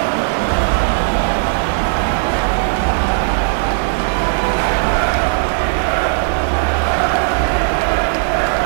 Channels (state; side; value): silent; left; digital silence